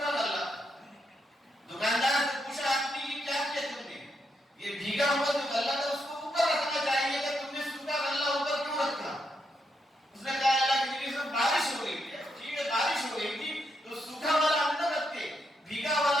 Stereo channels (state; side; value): normal; both; correlation 0.80